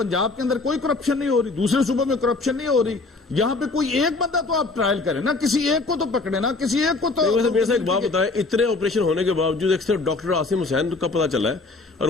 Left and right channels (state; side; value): quieter; right; 3.6 dB